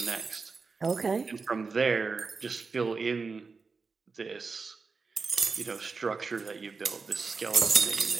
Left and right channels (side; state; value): left; quieter; 4.6 dB